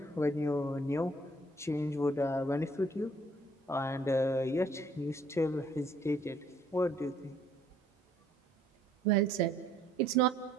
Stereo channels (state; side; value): normal; both; correlation 0.62